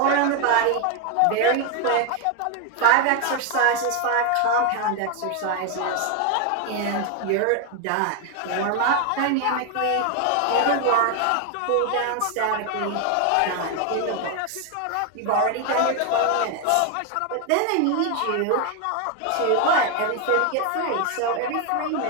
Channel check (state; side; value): different; both; correlation 0.01